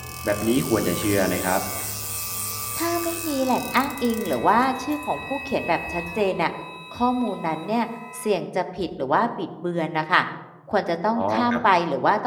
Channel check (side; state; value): both; identical; correlation 1.00